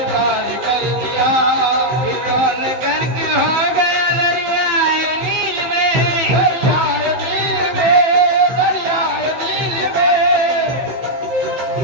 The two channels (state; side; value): late; left; 15 ms